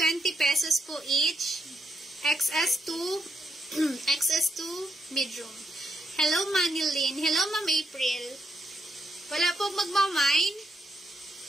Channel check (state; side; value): normal; both; correlation 0.78